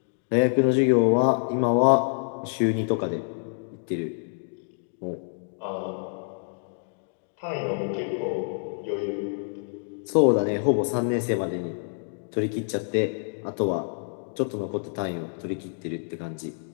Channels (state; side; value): silent; right; digital silence